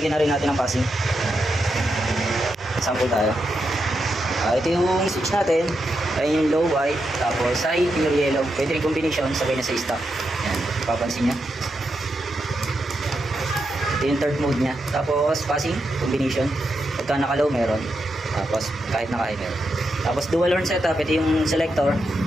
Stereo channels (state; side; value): normal; both; correlation 0.85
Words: na rin natin ang passing. Sample tayo. Ito yung switch natin. Ayun yung low white. Tapos side pure yellow. Pwede rin combination. Sabay na sa stock. Yan. Papansin nyo. Ito yung third mode nya. Tapos passing combination. Pagka naka-low meron. Tapos kahit naka-high meron. Tapos dual horn setup. Ito yung selector.